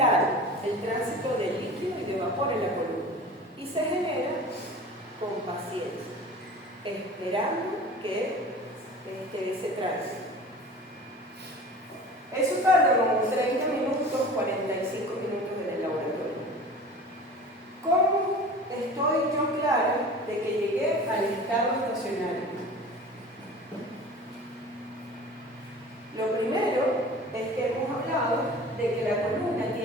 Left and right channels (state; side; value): normal; both; correlation 0.39